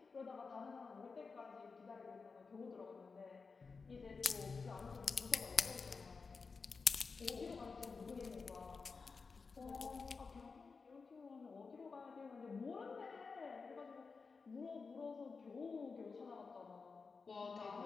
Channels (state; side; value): quieter; right; 4.7 dB